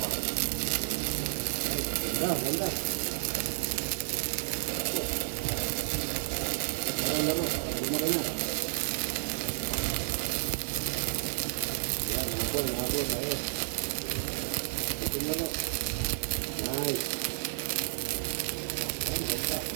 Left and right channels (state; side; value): silent; left; digital silence